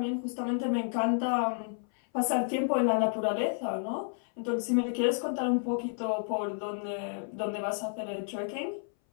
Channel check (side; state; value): right; silent; 57 dB below the other